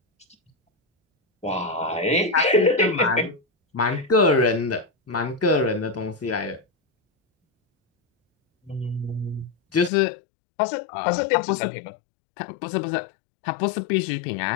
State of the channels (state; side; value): drops out; right; at 9.9 s